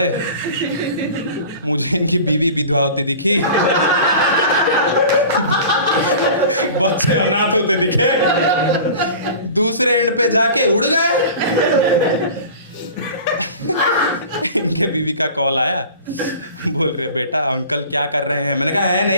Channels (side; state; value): both; inverted; correlation -0.40